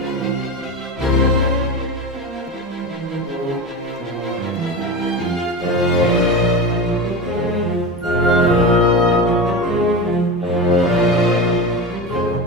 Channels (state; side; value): normal; both; correlation 0.24